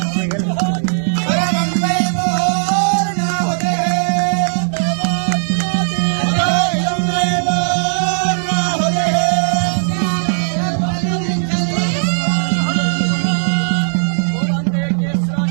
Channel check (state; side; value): silent; left; 68 dB below the other